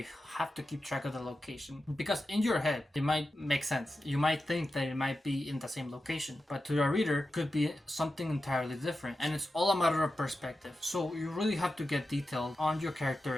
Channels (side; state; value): both; normal; correlation 0.91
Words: have to keep track of the location, because in your head it might make sense. You might think that it might be in the same location, but to the reader it could be something entirely different, and it's all a matter of perspective. So you really have to get detailed on your character